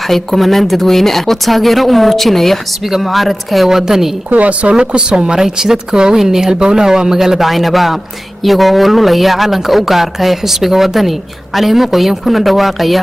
kumanaan dadweyne ah oo taageero u muujinaya xisbiga mucaaradka ee wadani kuwaas oo ku soo maray jidadka waaweyn ee halbowlaha waa magaalada Caynaba iyagoo oo lulaya calanka u gaarka ee xisbiga wadani caleemo qoyan kuna dhawaaqaya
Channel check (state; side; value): normal; both; correlation 0.97